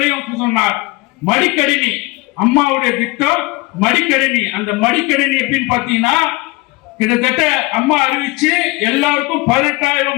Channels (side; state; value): right; quieter; 23.2 dB